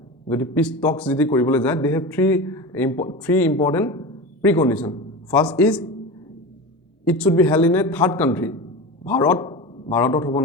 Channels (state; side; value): normal; both; correlation 0.27